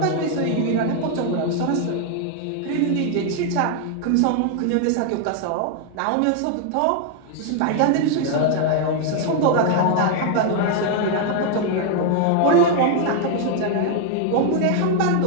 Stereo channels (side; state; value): both; different; correlation 0.00